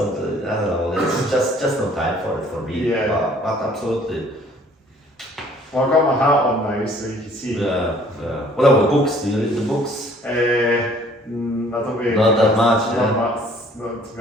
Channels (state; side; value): normal; both; correlation 0.57